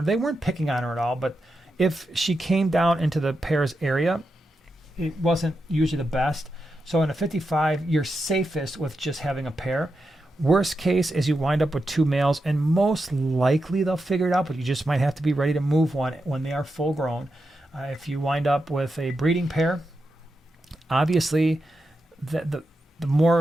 They weren't picking on her at all, but if she came down into the pair's area, it wasn't usually the best. So in a 55, you're safest with just having a pair. Worst case is you wind up with 2 males, and most likely they'll figure it out, but you just might have to be ready to move one when they are full grown. If you wind up with a breeding pair, obviously the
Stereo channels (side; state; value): both; normal; correlation 0.87